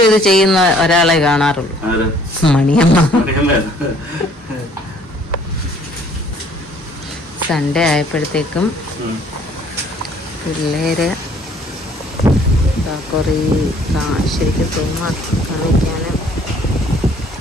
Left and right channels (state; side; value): normal; both; correlation 0.59